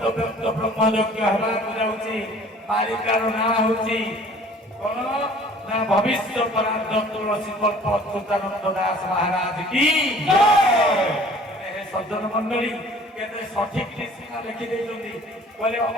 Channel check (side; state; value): both; normal; correlation 0.51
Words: व्यक्त ब्रह्मयज्ञ हेबाकु जाउछि। मालिकार नाम होछि कोन ना भविष्य परार्थ तुलसी कल्प अच्युतानंद दास महाराज की जय। सज्जन मंडली केते सठिक सीमा लिखि देइछन्ति बोले